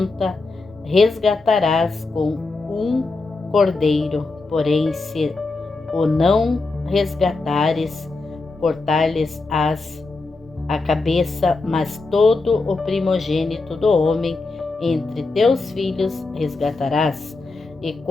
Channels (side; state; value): right; quieter; 3.6 dB